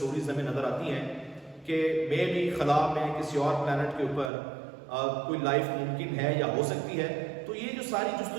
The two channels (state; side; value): drops out; left; at 4.3 s